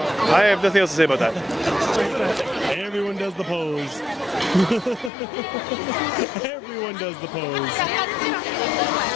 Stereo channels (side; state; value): right; drops out; at 5.1 s